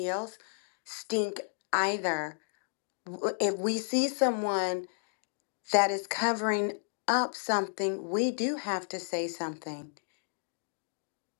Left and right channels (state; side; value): silent; right; digital silence